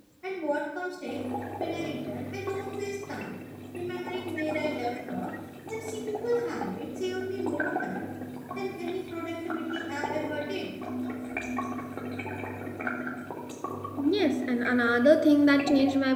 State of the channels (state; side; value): identical; both; correlation 1.00